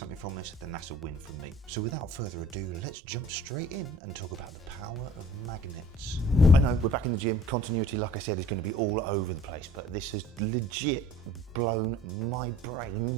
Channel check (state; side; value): normal; both; correlation 0.49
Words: from this, then that's a win for me. So without further ado, let's jump straight in and talk about the power of magnets. I know, we're back in the gym. Continuity, like I said, is going to be all over the place, but this has legit blown my